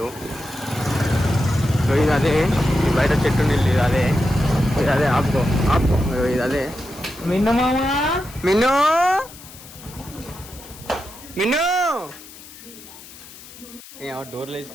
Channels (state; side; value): noise; left; hiss, 18 dB below the sound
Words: ఇది అదే బయట చెట్టు నీళ్ళు. ఇది అదే ఆపుకో ఇది అదే. మిన్ను మిన్ను మిన్ను డోర్లు